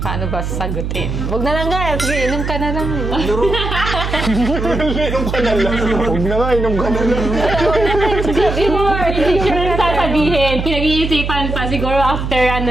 ba sasagutin? Huwag na lang guys. Sige, inom ka na lang. Inom ka na lang. Huwag na nga, inom ka na lang. Before, hindi sure na sasabihin. Pinag-iisipan pa siguro after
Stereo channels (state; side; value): noise; right; hum, 3 dB below the sound